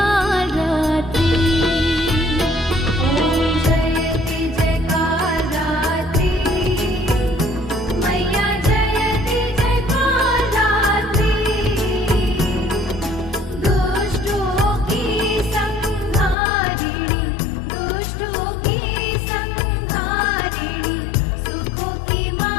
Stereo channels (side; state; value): right; drops out; at 16.4 s